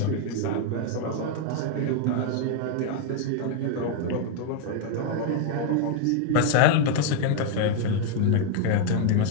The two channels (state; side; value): different; both; correlation 0.00